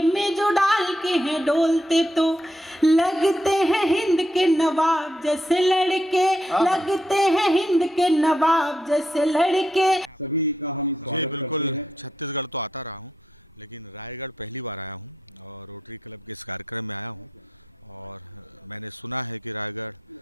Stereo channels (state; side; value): normal; both; correlation 0.79